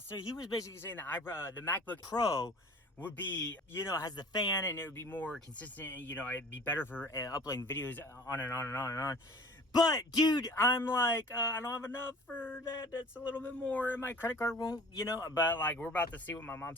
he was basically saying that the MacBook Pro would be, you know, has the fan and it would be more consistent and, you know, it'd be better for uploading videos on and on and on and on. But, dude, I'm like, I don't have enough for that. That's a little bit more. And my credit card won't, you know, but, like, we're about to see what my mom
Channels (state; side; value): normal; both; correlation 0.45